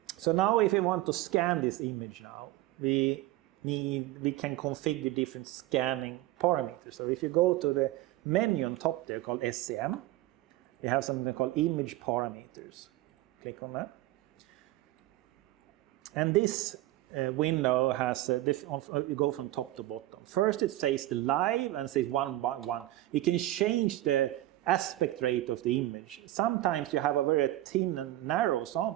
So now if we want to scan this image now, we can configure different scanning parameters. So if you go to the menu on top there called SEM, we have something called image parameters. Click on that. And this window has, you go from top to bottom. First it says the live and says 1 by 1. You can change the aspect rate of the image. Sometimes you have a very thin and narrow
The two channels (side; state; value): left; quieter; 16.0 dB